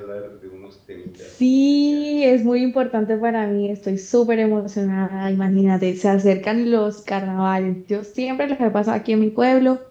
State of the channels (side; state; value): both; identical; correlation 1.00